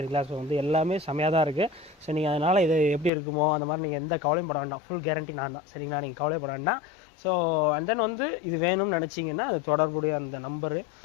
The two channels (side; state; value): right; drops out; at 3.1 s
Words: ஸோ வந்து எல்லாமே செமையாக தான் இருக்குது. ஸோ நீங்கள் அதனால் இது எப்படி இருக்குமோ அந்த மாதிரி நீங்கள் எந்த கவலையும் பட வேண்டாம், ஃபுல் கேரண்டி நான் தான். சரிங்களா, நீங்கள் கவலைப்பட வேண்டாம். ஸோ அண்ட் தென் வந்து இது வேணும்னு நினச்சிங்கன்னா அது தொடர்புடைய அந்த நம்பரு,